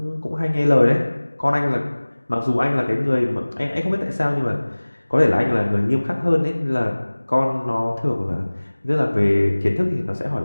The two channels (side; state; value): both; inverted; correlation -1.00